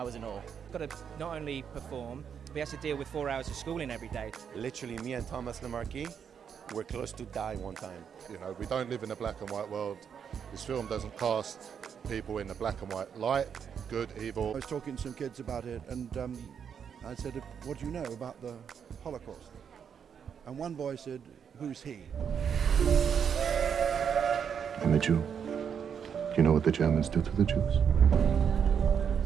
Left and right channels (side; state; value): left; quieter; 7.5 dB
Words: was in awe. Got to not only perform, but he has to deal with 4 hours of schooling every day. Literally, me and Thomas Lemarquis were close to die one time. You know, we don't live in a black and white world. This film doesn't cast people in the black and white light, good, evil. I was talking to some kids about it, and I said, what do you know about the Holocaust? And one boy said, who's he? I'm a Jew. You know what the Germans did to the Jews?